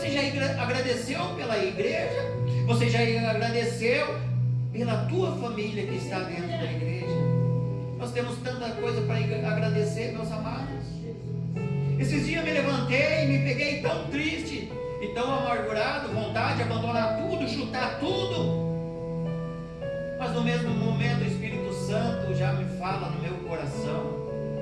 já agradeceu pela igreja? Você já agradeceu pela tua família que está dentro da igreja? Nós temos tanta coisa para agradecer, meus amados. Esses dias me levantei e me peguei tão triste e tão amargurado, vontade de abandonar tudo, chutar tudo. Mas no mesmo momento o Espírito Santo já me fala no meu coração:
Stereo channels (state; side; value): identical; both; correlation 1.00